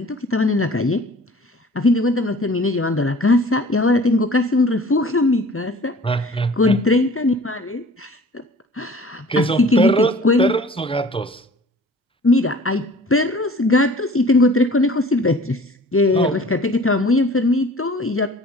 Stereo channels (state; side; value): normal; both; correlation 0.47